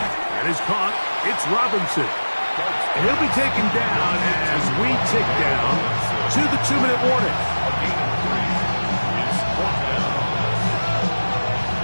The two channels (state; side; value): inverted; both; correlation -1.00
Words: And is caught, it's Robinson. And he'll be taken down as we tick down to the 2-minute warning.